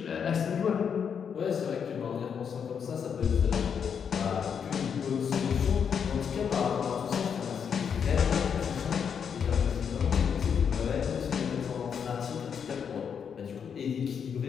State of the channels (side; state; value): right; quieter; 7.2 dB